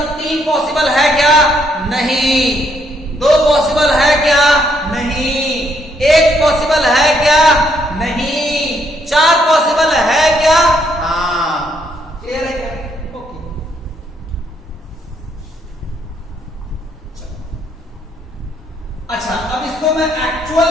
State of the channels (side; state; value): both; normal; correlation 0.72